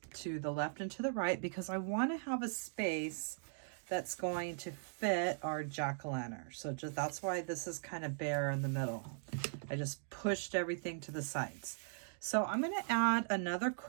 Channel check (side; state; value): left; silent; digital silence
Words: to the left and to the right because I want to have a space that's going to fit our jack-o'-lantern. So that's why this is kind of bare in the middle. I just pushed everything to the sides. So I'm going to add another